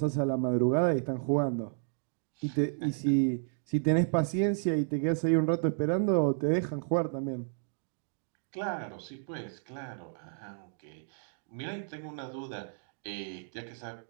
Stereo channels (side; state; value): left; silent; digital silence